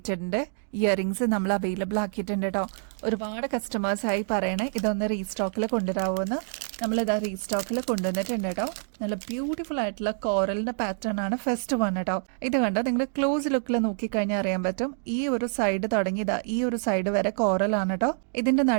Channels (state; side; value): silent; left; digital silence